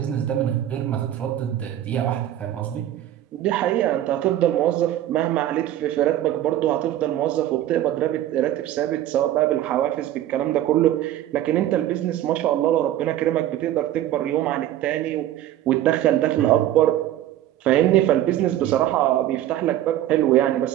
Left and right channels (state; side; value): quieter; left; 12.6 dB